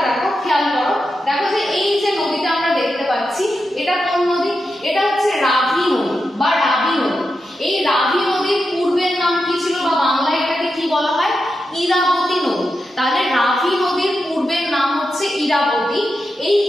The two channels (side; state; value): both; normal; correlation 0.88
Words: দেখো, খেয়াল করো, দেখো যে এই যে নদীটা আমরা দেখতে পাচ্ছি এটা কোন নদী? এটা হচ্ছে রাভি নদী বা রাবি নদী। এই রাভি নদীর পূর্বের নাম কি ছিল, বা বাংলায় এটাকে কি বলা হয়? ইরাবতী নদী। তাহলে রাভি নদীর পূর্বের নাম হচ্ছে ইরাবতী। এই